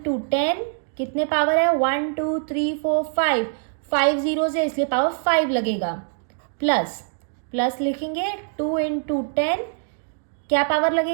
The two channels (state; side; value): silent; left; digital silence